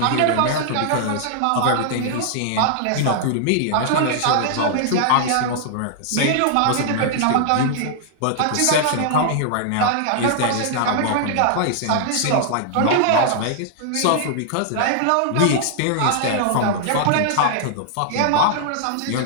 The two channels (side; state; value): both; different; correlation -0.01